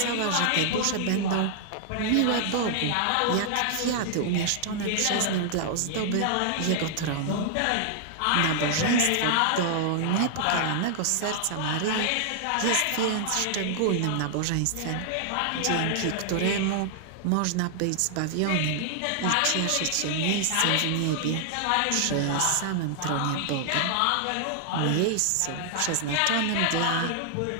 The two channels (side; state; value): both; different; correlation -0.01